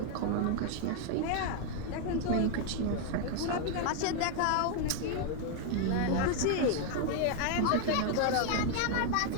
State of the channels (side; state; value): both; different; correlation 0.00